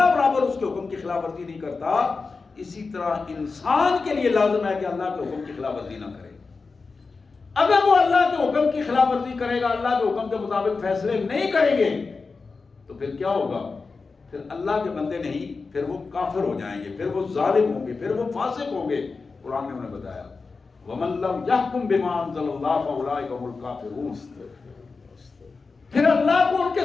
برابر اس کے حکم کی خلاف ورزی نہیں کرتا، اسی طرح انسان کے لیے لازم ہے کہ اللہ کے حکم کی خلاف ورزی نہ کرے. اگر وہ اللہ کے حکم کی خلاف ورزی کرے گا، اللہ کے حکم کے مطابق فیصلے نہیں کریں گے، تو پھر کیا ہوگا؟ پھر اللہ کے بندے نہیں، پھر وہ کافر ہو جائیں گے، پھر وہ ظالم ہوں گے، پھر وہ فاسق ہوں گے. قرآن نے انہیں بتایا وَمَن لَّمْ يَحْكُم بِمَا أَنزَلَ اللَّهُ فَأُولَٰئِكَ هُمُ الْكَافِرُونَ. پھر اللہ کو ان کے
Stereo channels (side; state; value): right; quieter; 4.3 dB